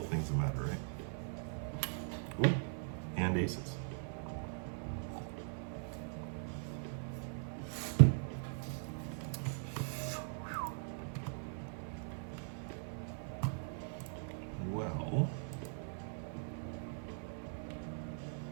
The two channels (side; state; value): left; silent; 51 dB below the other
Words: things that matter, right? Ooh, and aces.